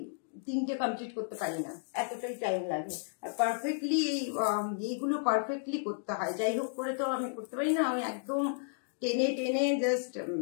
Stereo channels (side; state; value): right; silent; digital silence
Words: 3টে কমপ্লিট করতে পারি না, এতটাই টাইম লাগে। আর পারফেক্টলি এইগুলো পারফেক্টলি করতে হয়, যাই হোক করে তো আমি করতে পারি না, আমি একদম টেনে টেনে জাস্ট।